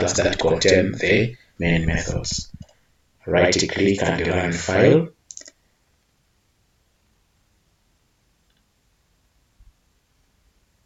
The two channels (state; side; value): identical; both; correlation 1.00